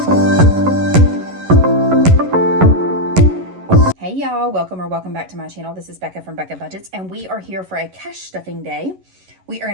y'all, welcome back to my channel. This is Becca from Becca Budgets, and we are here for a cash stuffing day. We are going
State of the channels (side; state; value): left; late; 11 ms